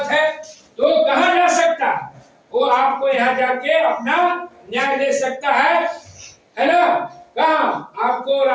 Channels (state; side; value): identical; both; correlation 1.00